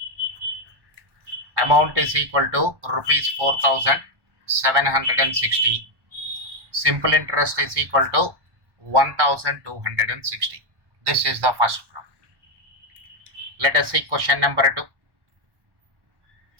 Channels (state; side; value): late; left; 1.1 ms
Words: Amount is equal to rupees 4,760. Simple interest is equal to 1,260. This is the first problem. Let us see question number 2.